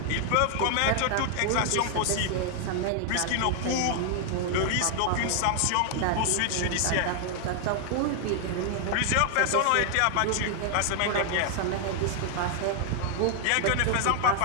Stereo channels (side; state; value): both; different; correlation 0.00